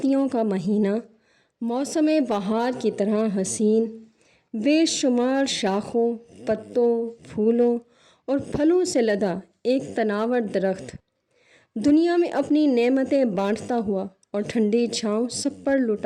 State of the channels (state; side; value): identical; both; correlation 1.00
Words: کا مہینہ موسم بہار کی طرح حسین، بے شمار شاخوں، پتوں، پھولوں اور پھلوں سے لدا ایک تناور درخت، دنیا میں اپنی نعمتیں بانٹتا ہوا اور ٹھنڈی چھاؤں سب پر